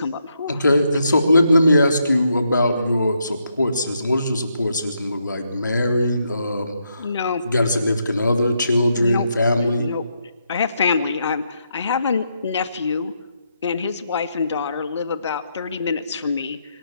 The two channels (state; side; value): inverted; both; correlation -0.79